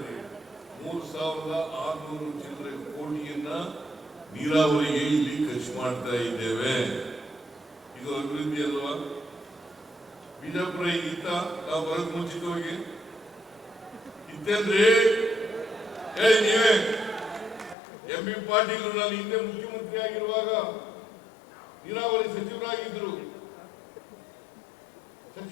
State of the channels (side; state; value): right; drops out; at 17.8 s